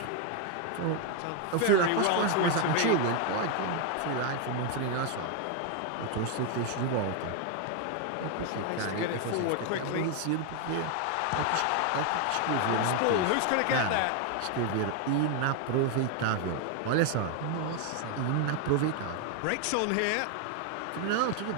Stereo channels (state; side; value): different; both; correlation 0.01